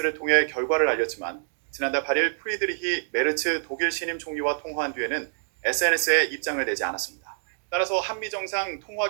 통해 결과를 알렸지만 지난달 8일 프리드리히 메르츠 독일 신임 총리와 통화한 뒤에는 SNS에 입장을 내지 않았습니다. 따라서 한미 정상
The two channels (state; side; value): silent; left; digital silence